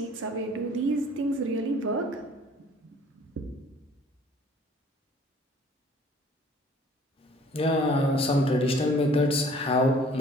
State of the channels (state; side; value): normal; both; correlation 0.54